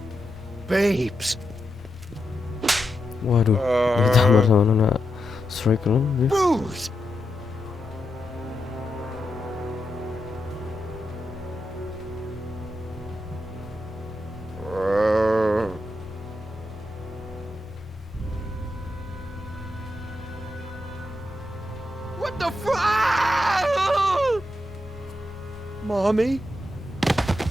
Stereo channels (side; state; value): both; normal; correlation 0.86